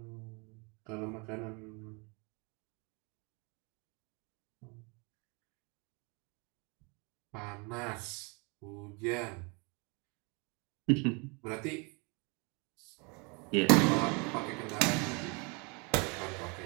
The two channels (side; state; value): left; quieter; 31.2 dB